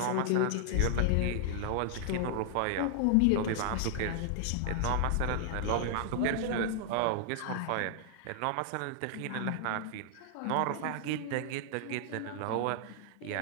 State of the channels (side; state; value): both; different; correlation 0.00